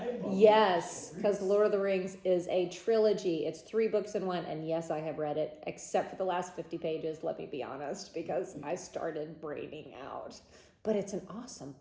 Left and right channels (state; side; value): identical; both; correlation 1.00